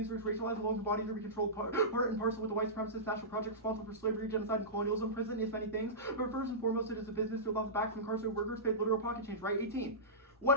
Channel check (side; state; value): both; normal; correlation -0.19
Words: to racialize along the bodies of every controlled part and parcel with the white supremacist national project responsible for slavery, genocide, and colonialism. Prison is many things, but first and foremost, it is a business built off the backs of incarcerated workers paid literal pocket change. Right? 18. What